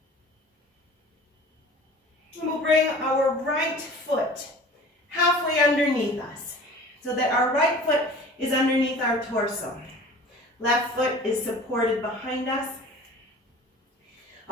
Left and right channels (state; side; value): normal; both; correlation 0.43